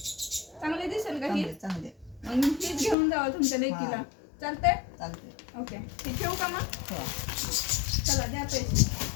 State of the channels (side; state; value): right; drops out; at 3.0 s